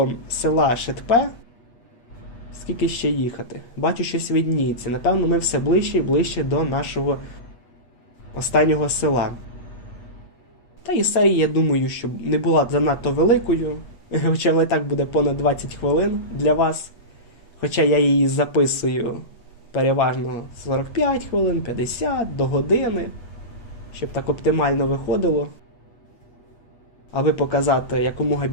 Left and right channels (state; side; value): late; right; 8.6 ms